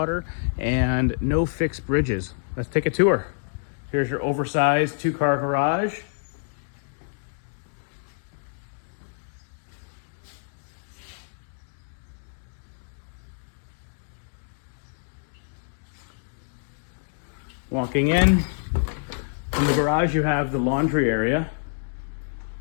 and no fixed bridges. Let's take a tour. Here's your oversized 2-car garage. Walking in the garage, you have the laundry area.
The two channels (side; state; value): right; silent; digital silence